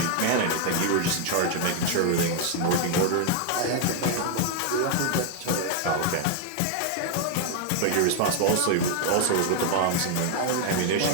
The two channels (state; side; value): different; both; correlation 0.00